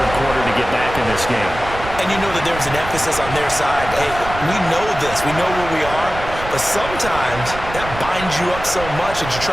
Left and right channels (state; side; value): noise; right; rumble, 11 dB below the sound